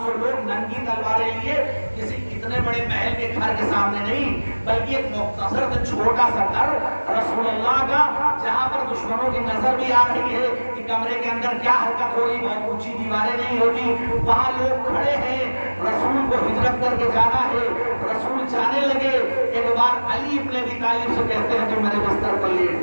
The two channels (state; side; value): inverted; both; correlation -1.00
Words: لوگ ننگی تلواریں لیے، کسی اتنے بڑے محل کے گھر کے سامنے نہیں بلکہ ایک مختصر سے چھوٹا سا گھر رسول اللہ کا، جہاں پر دشمنوں کی نظر بھی آ رہی ہے کہ کمرے کے اندر کیا حرکت ہو رہی، بہت اونچی دیواریں نہیں ہوتی، وہاں لوگ کھڑے ہیں، رسول کو ہجرت کر کے جانا ہے۔ رسول جانے لگے، ایک بار علی ابن ابی طالب سے کہتے ہیں تو میرے بستر پر